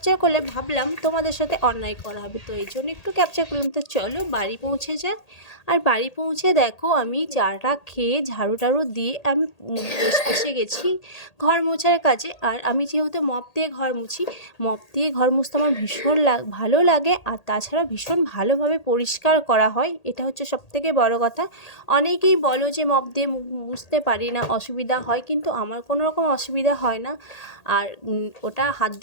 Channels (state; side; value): late; right; 1.8 ms